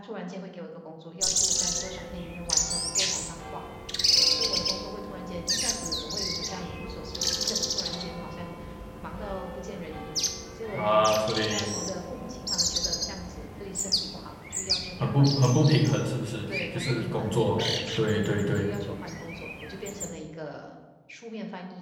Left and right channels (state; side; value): identical; both; correlation 1.00